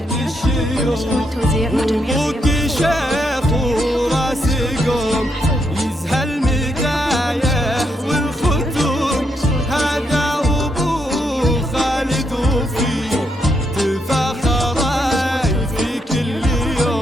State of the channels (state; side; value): normal; both; correlation 0.78